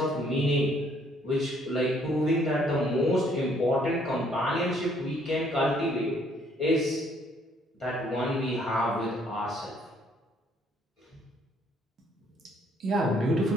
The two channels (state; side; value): normal; both; correlation 0.65